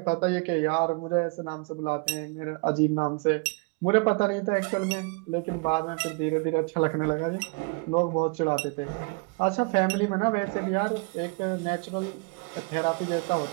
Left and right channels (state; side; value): quieter; left; 31.8 dB